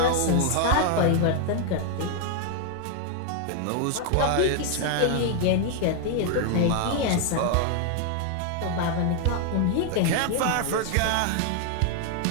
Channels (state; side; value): different; both; correlation 0.00